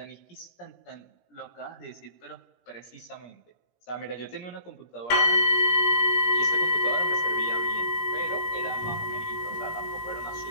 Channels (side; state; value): right; late; 17 ms